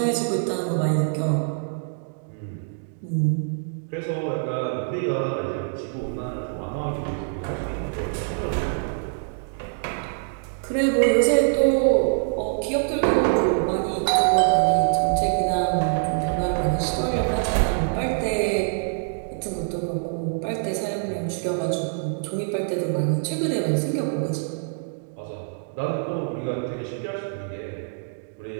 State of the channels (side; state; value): left; silent; digital silence